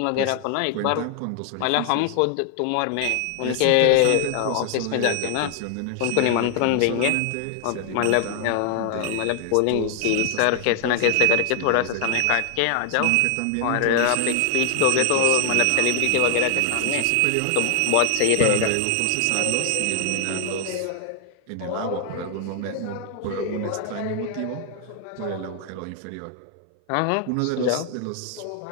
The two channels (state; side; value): different; both; correlation 0.00